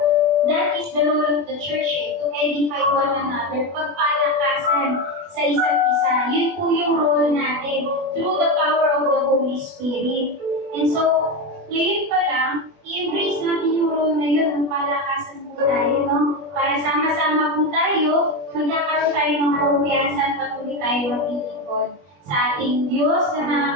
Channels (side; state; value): left; late; 21 ms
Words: That is the role of the church to edify one another, pagpalakasan sa isa't isa. Yun po yung role natin through the power of the Holy Spirit. And so, ngayon pa lang, i-embrace natin yung role na yun, palakasan po tayo, no? Para sama-sama po tayo, magkakaroon tayo ng kumpiyansa at patuloy tayo maglilingkod sa ating Diyos na